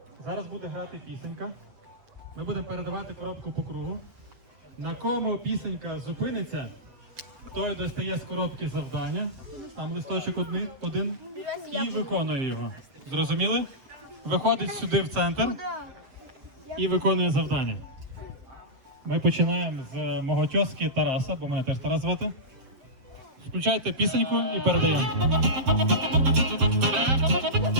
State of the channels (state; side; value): late; left; 8.0 ms